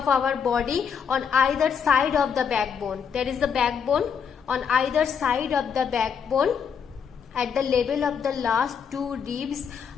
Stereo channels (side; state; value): right; quieter; 7.0 dB